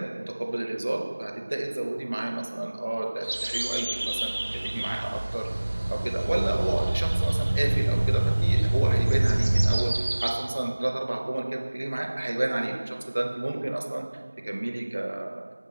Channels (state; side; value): inverted; both; correlation -1.00